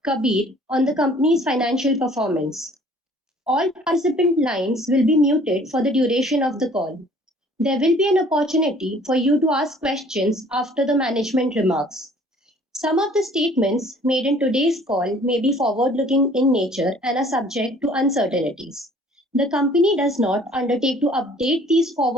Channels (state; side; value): normal; both; correlation 0.54